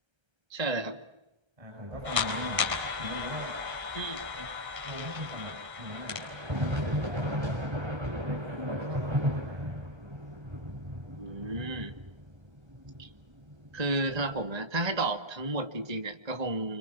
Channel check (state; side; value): late; left; 1.3 ms